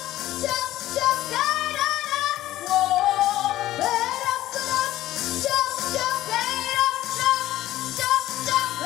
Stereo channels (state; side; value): quieter; right; 14.7 dB